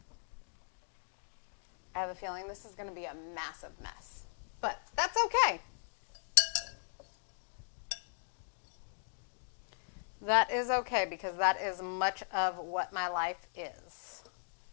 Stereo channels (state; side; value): silent; right; digital silence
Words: I have a feeling this is going to be a massive mess, but that's okay. That is okay because that is much of what my life is.